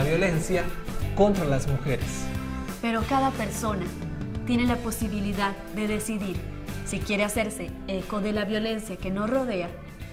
violencia contra las mujeres. Pero cada persona tiene la posibilidad de decidir si quiere hacerse eco de la violencia que nos rodea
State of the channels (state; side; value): identical; both; correlation 1.00